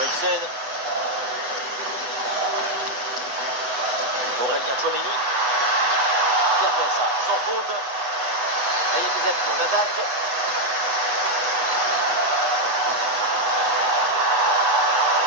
Aurélien Chouameni. Bien fait ça, sans faute. Là, il y a des appuis, on attaque.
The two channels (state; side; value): late; left; 8.2 ms